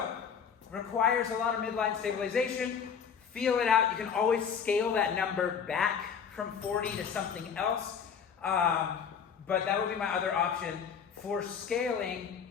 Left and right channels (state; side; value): quieter; right; 7.0 dB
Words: requires a lot of midline stabilization. Feel it out. You can always scale that number back from 40 to something else. But that would be my other option for scaling